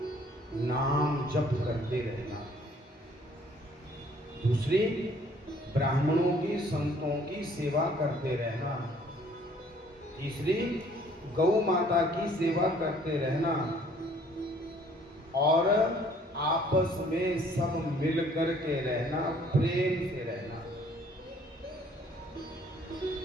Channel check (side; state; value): both; normal; correlation 0.59